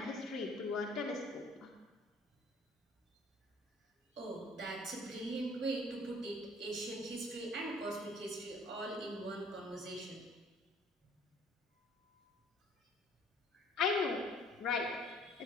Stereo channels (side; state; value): both; normal; correlation 0.55